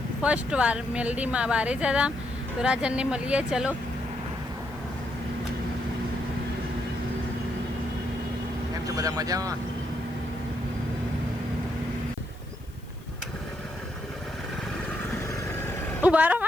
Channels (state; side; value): noise; left; hiss, 26 dB below the sound